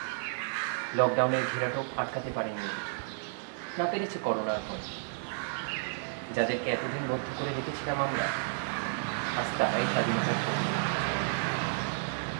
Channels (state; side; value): silent; left; digital silence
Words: লকডাউনের ঘেরাটোপ আটকাতে পারেনি ওদের। না পেরেছে করোনার ভয়। যাদেরকে এতদিন বদ্ধ করে রেখেছিলাম আমরা, আজ তারাই স্বাধীনতার পর।